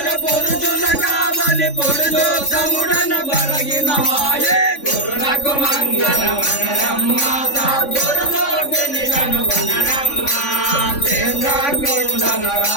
కావలి పురుషోత్తముడన బరగిన మాయే గురునకు మంగళమనరమ్మ సద్గురుమూర్తిని కనుగొనరమ్మ చంద్రకుండన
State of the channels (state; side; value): late; right; 3.5 ms